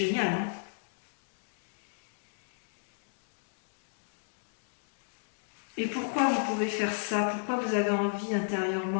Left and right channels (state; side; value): silent; right; digital silence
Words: hein? Et pourquoi vous pouvez faire ça? Pourquoi vous avez envie